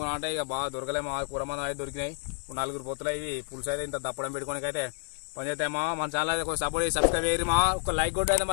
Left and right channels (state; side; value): silent; right; 58 dB below the other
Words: అంటే ఇక బాగా దొరకలేమో. కూర మంది అయితే దొరికినాయి. ఇప్పుడు 4 పొత్తులు ఇవి పులుసు అయితే ఇంత దప్పడం పెట్టుకోనికి అయితే పని చేస్తామా. మన ఛానల్ అయితే కొంచెం సపోర్ట్ చేసి సబ్స్క్రైబ్ చేయరు మా. ఒక లైక్ కొట్టి అయితే